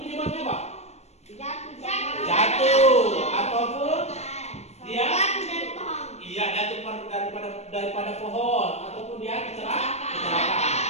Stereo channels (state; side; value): late; right; 0.31 ms